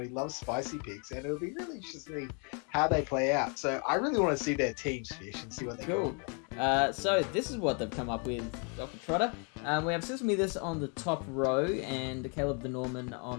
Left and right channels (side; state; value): right; quieter; 37.5 dB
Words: He loves spicy picks, and it'll be really interesting how they play out. So I really want to see their teams, Fish, and see what they go. So this is what they've come up with, Dr. Trotter. We have Cizzlemethis on the top row and CalebTheNorman on